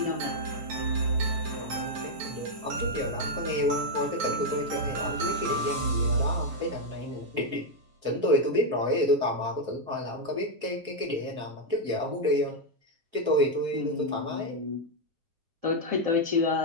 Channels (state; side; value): late; left; 7.4 ms